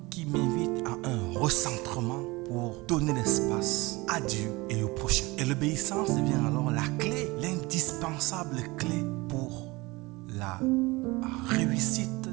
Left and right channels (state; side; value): quieter; left; 22.9 dB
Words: qui m'invite à un recentrement pour donner l'espace à Dieu et au prochain. Et l'obéissance devient alors la clé, l'indispensable clé pour la réussite